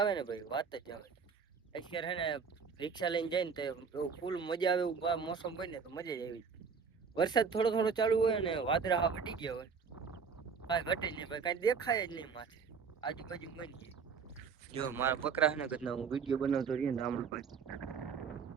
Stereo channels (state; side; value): quieter; left; 5.9 dB